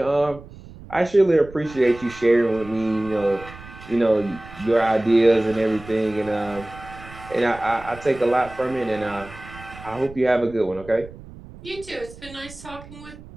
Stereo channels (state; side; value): noise; right; rumble, 18 dB below the sound